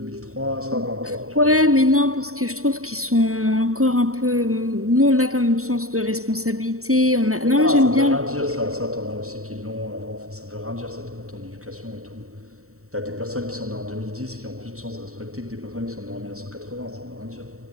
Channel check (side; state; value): left; late; 0.64 ms